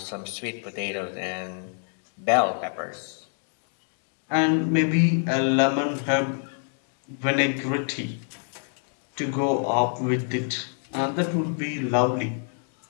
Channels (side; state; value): right; silent; 56 dB below the other